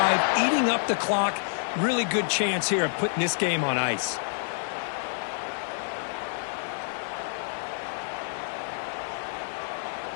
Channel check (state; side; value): silent; right; 57 dB below the other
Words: eating up the clock. Really good chance here of putting this game on ice.